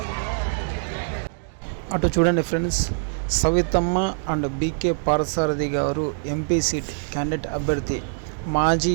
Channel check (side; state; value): left; silent; digital silence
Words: అటు చూడండి friends, Savitamma and BK Parthasarathi garu MP seat candidate అభ్యర్థి, మాజీ